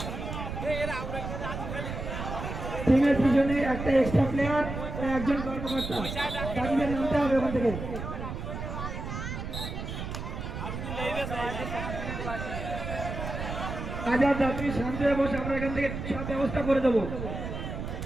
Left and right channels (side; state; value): right; noise; rumble, 6 dB below the sound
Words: টিমের পিছনে একটা এক্সট্রা প্লেয়ার একজন কর্মকর্তা দাবিদের নামতে হবে ওখান থেকে। হাজার যাত্রী শান্ত হয়ে বসে আমরা এখান থেকে সব ব্যবস্থা করে দেবো।